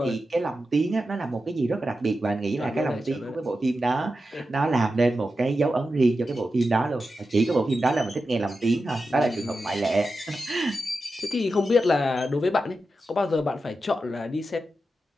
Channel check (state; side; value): normal; both; correlation 0.90